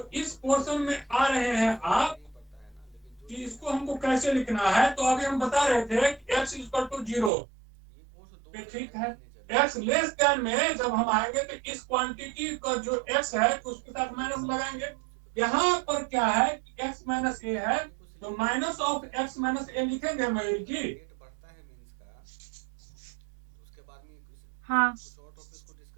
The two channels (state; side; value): drops out; left; at 7.3 s